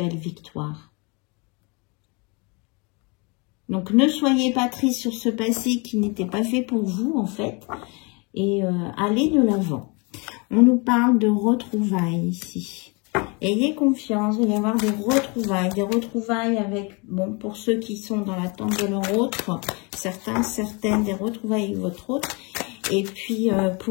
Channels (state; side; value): quieter; right; 30.6 dB